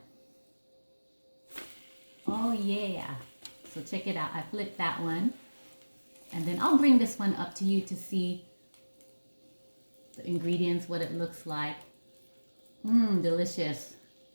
Oh yeah. So check it out. I flipped that one. And then I'll bring this one up to you to see the ingredients, what it looks like. Delicious.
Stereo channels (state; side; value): inverted; both; correlation -1.00